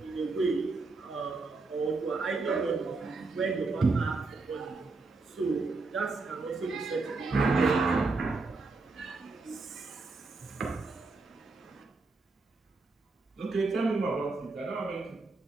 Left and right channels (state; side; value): quieter; left; 3.8 dB